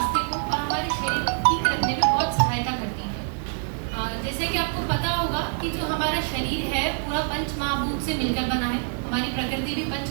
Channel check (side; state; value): left; silent; 56 dB below the other